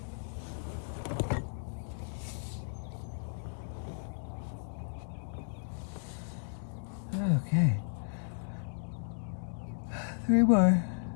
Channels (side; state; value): right; silent; digital silence